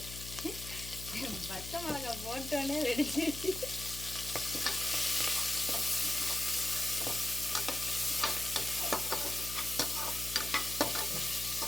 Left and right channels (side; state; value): left; noise; hum, 11 dB below the sound